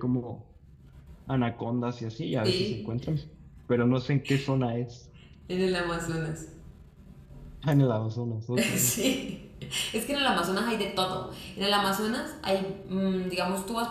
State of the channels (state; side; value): identical; both; correlation 1.00